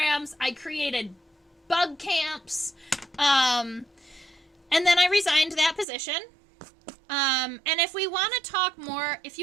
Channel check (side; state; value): left; drops out; at 5.9 s